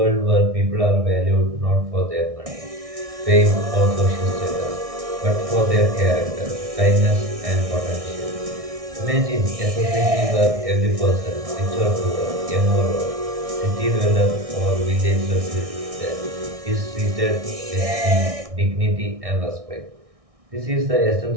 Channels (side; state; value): left; late; 1.6 ms